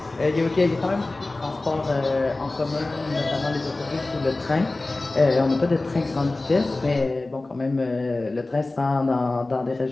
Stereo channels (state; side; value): quieter; right; 3.1 dB